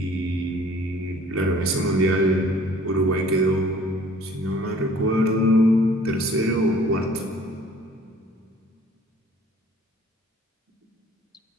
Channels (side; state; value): both; normal; correlation 0.53